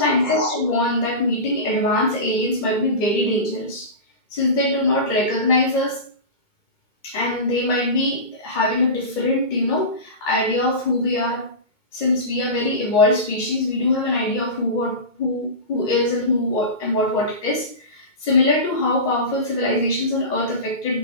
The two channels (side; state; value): right; late; 2.2 ms